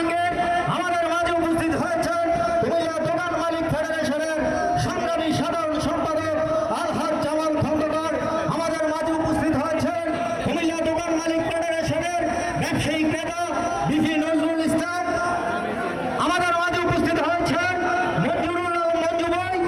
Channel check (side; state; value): both; identical; correlation 1.00